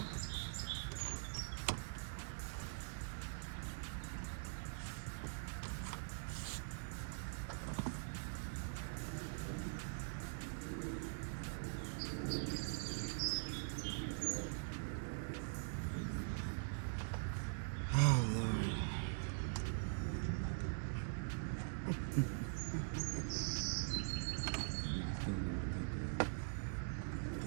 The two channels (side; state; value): left; silent; digital silence